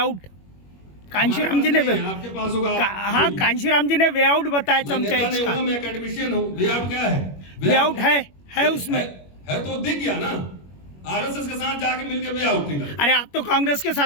कांशीराम जी ने आपके पास होगा। हाँ, कांशीराम जी ने वे आउट बताया चमचाएज का। मैं एकेडमिशियन हूँ। वे आउट क्या है? वे आउट है उसमें है तो दिख गया ना, आरएसएस के साथ जाके मिलके वे आउट निकल। अरे आप तो कांग्रेस के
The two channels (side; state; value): right; late; 21 ms